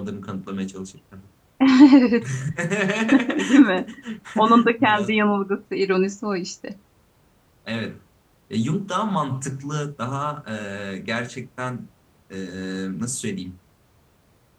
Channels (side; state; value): both; identical; correlation 1.00